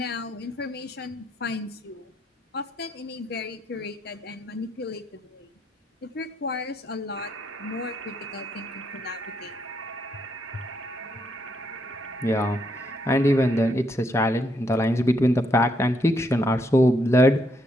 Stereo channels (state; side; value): normal; both; correlation 0.75